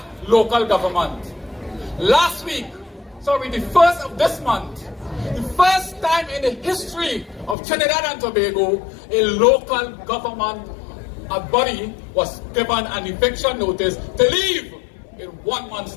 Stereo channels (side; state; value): right; drops out; at 7.6 s